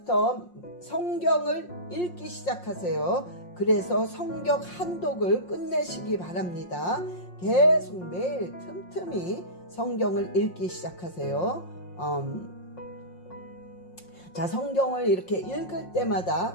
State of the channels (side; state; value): right; late; 5.6 ms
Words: 성경을 읽기 시작하세요. 그래서 성경 한독을 끝내시기 바랍니다. 계속 매일 틈틈이 성경을 읽기 시작하세요. 자, 성경을 이렇게 읽을